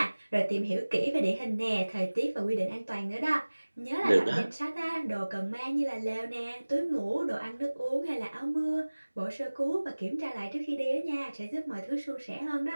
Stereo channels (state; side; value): inverted; both; correlation -1.00